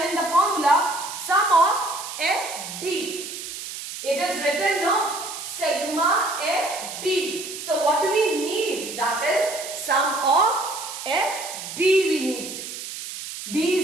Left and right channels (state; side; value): noise; right; hiss, 9 dB below the sound